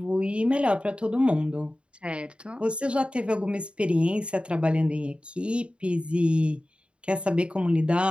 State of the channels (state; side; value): late; left; 0.057 ms